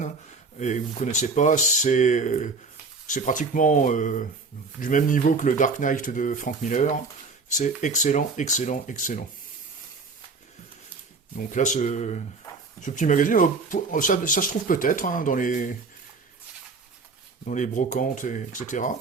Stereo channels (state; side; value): quieter; left; 4.1 dB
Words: et que vous ne connaissez pas, c'est pratiquement du même niveau que le Dark Knight de Frank Miller, c'est excellent, excellent, excellent. Donc là, ce petit magazine, ça se trouve peut-être hein, dans les brocantes, etc.